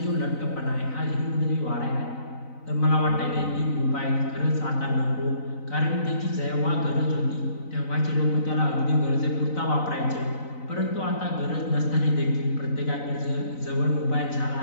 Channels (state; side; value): late; right; 4.0 ms